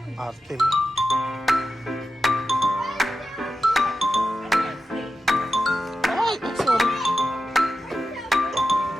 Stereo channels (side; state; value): both; normal; correlation 0.91